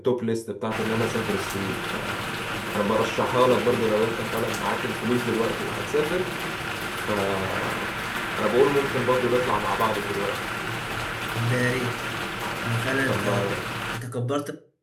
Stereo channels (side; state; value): both; identical; correlation 1.00